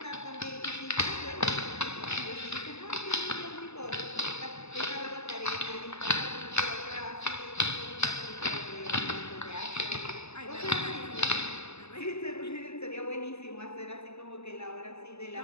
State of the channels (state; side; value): late; right; 0.80 ms